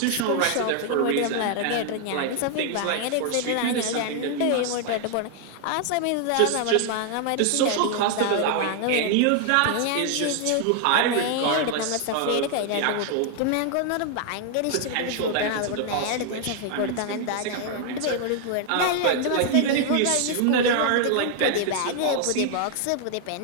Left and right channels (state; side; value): different; both; correlation 0.00